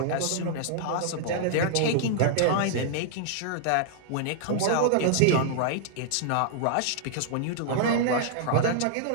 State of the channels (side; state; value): both; different; correlation -0.01